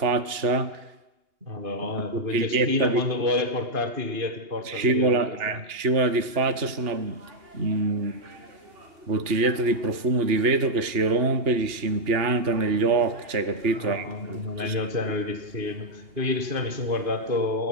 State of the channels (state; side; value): late; left; 2.8 ms